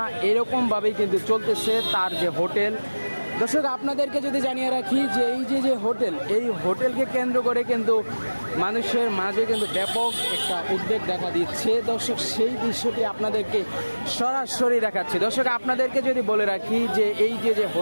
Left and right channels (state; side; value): inverted; both; correlation -1.00